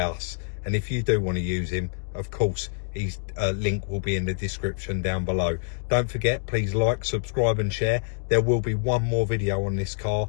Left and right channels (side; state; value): right; silent; digital silence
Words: and if you do want to use him, of course his link will be in the description down below. Don't forget, please like, subscribe and share. There will be one more video on this car.